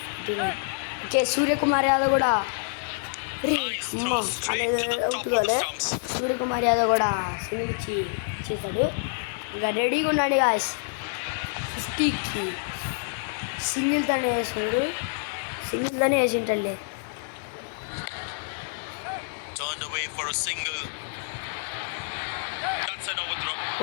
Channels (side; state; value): right; silent; digital silence